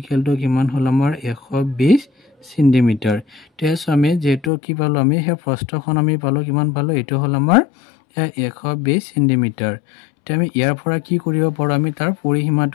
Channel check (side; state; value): right; drops out; at 4.5 s